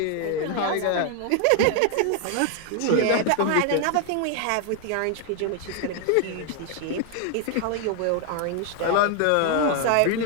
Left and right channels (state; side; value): different; both; correlation 0.00